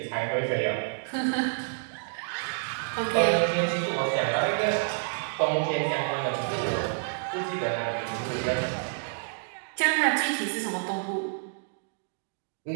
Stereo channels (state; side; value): silent; left; digital silence